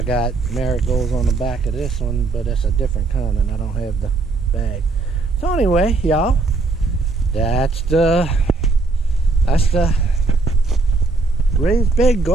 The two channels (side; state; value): left; quieter; 3.5 dB